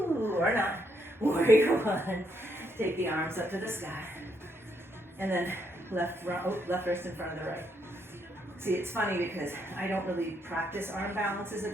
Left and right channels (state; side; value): normal; both; correlation 0.75